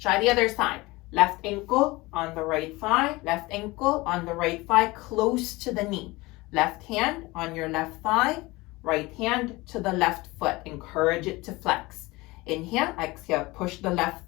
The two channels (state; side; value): quieter; right; 21.8 dB